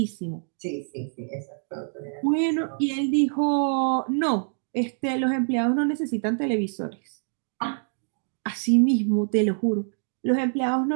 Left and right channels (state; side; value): silent; left; digital silence